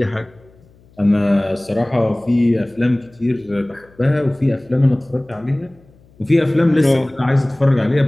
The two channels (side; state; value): left; noise; hum, 29 dB below the sound